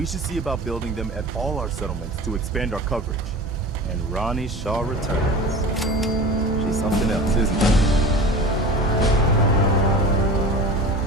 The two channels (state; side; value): normal; both; correlation 0.35